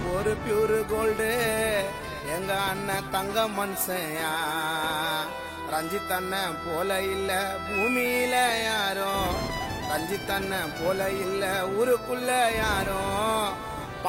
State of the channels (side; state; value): both; identical; correlation 1.00